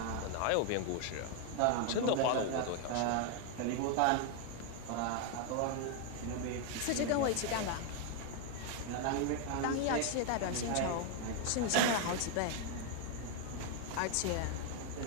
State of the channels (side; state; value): both; different; correlation 0.01